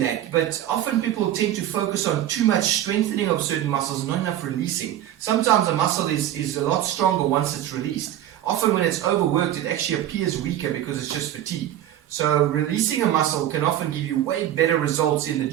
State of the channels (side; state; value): left; quieter; 12.0 dB